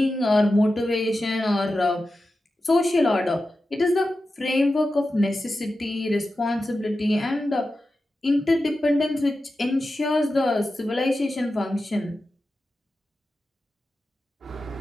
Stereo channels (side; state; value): both; normal; correlation 0.92